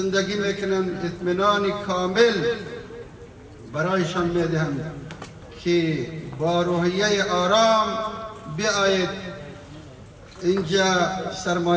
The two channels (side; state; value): both; identical; correlation 1.00